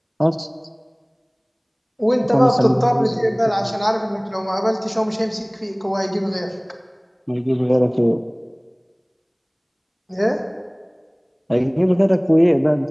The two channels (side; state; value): both; identical; correlation 1.00